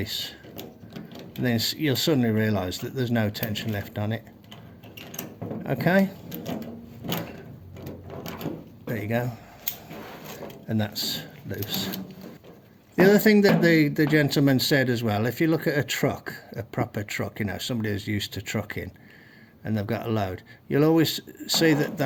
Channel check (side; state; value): both; identical; correlation 1.00